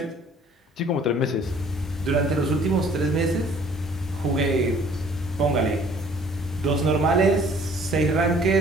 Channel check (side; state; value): both; normal; correlation 0.56